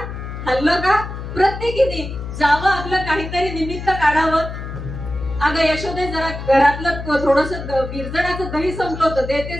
हल्लं का, प्रत्येकीने जावं, आपलं काहीतरी निमित्त काढावं. अगं यशोदे जरा घरातलं थोडस विरजणाचं दही संपलं होतं,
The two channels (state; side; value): noise; left; hum, 8 dB below the sound